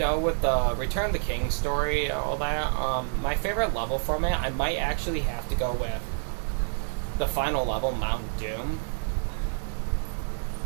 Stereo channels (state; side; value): silent; left; 59 dB below the other